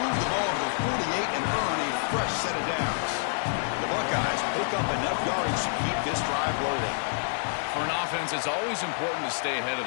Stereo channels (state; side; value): silent; right; 55 dB below the other